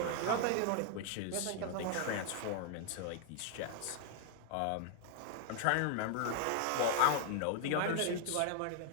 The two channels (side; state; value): both; different; correlation 0.00